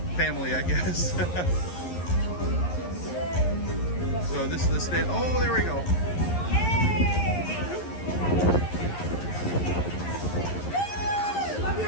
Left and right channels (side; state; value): right; late; 11 ms